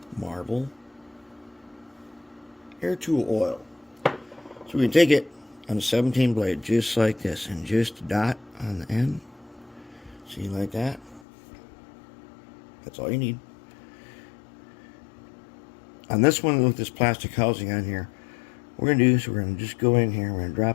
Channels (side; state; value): right; drops out; at 11.2 s